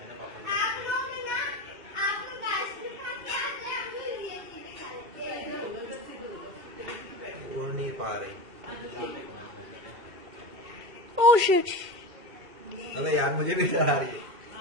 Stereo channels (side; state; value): left; late; 2.3 ms